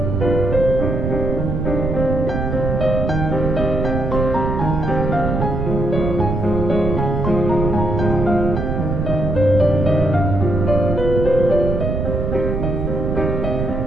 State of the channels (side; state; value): right; noise; rumble, 1 dB below the sound